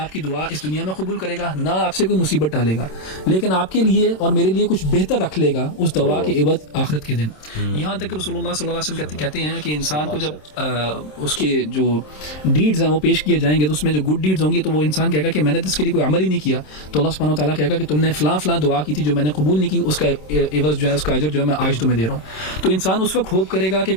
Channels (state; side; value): late; right; 27 ms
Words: کی دعا اس دنیا میں قبول کرے گا, نہ آپ سے کوئی مصیبت ٹالے گا, لیکن آپ کے لیے اور میرے لیے کچھ بہتر رکھ لے گا اس دعا کے عوض آخرت کے دن. یہاں تک کہ رسول اللہ صلی اللہ علیہ وسلم کہتے ہیں کہ انسان کو جب اس کے جو ڈیڈز ہیں وہ پیش کیے جائیں گے تو اس میں جو گڈ ڈیڈز ہوں گی تو وہ انسان کہے گا کہ میں نے اس کے لیے کوئی عمل ہی نہیں کیا, تو اللہ سبحانہ وتعالیٰ کہے گا کہ تم نے فلاں فلاں دعا کی تھی جو میں نے قبول نہیں کی, اس کا عوض جو ہے, اس کا اجر جو ہے میں آج تمہیں دے رہا ہوں. تو انسان اس وقت ہوپ کرے گا کہ